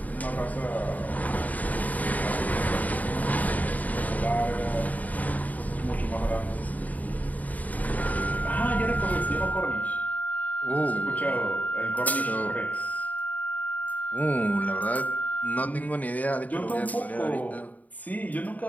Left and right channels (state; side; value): late; right; 0.075 ms